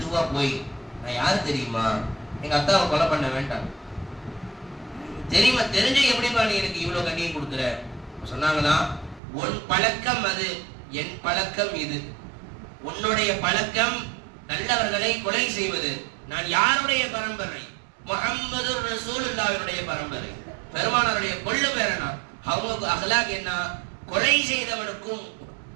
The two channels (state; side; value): drops out; left; at 9.2 s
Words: போய், நான் யாரு தெரியுமா? எங்க அத்தாவை கொலை பண்ண வேண்டாம். தெரியுமா? தெரிஞ்ச எப்படிப்பா நீ எனக்கு இவ்வளவு கண்ணியம் கொடுக்குற? சொன்னாங்களா, உன் பழக்கம் அது, என் பழக்கம் இது. உன்னுடைய பழக்கம் நல்லவர்களை கொலை செய்வது. நான் யாருடைய பரம்பரை? முஹம்மது ரசூலுல்லாஹ்வுடைய பரம்பரை. பெருமானாருடைய கொள்ளு பேரனா. அவங்க அகலாக் என்ன? கொலை செய்தவனுக்கும்